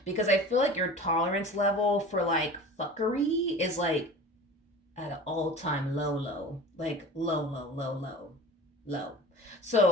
because I feel like your tolerance level for like fuckery is like at an all-time low, like low.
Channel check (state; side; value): normal; both; correlation 0.38